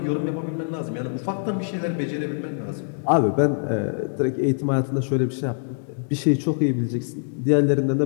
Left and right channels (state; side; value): silent; right; digital silence